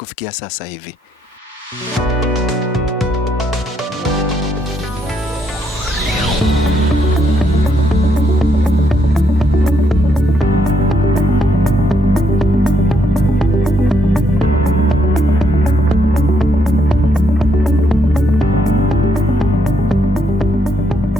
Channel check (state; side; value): normal; both; correlation 0.74